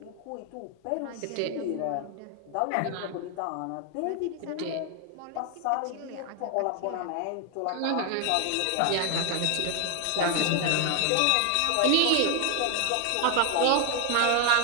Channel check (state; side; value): different; both; correlation 0.00